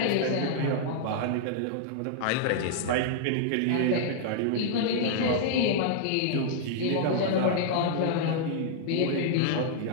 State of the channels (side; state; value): both; different; correlation -0.01